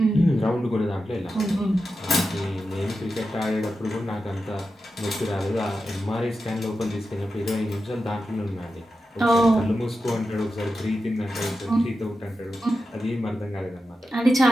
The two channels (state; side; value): normal; both; correlation 0.90